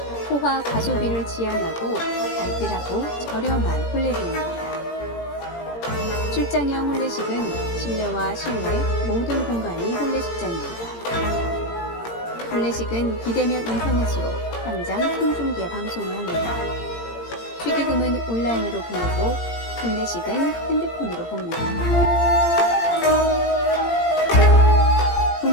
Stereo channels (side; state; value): right; late; 17 ms